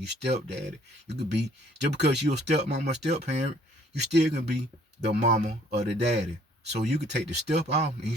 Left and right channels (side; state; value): both; normal; correlation 0.60